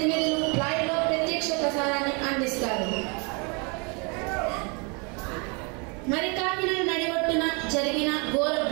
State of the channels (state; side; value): quieter; left; 32.7 dB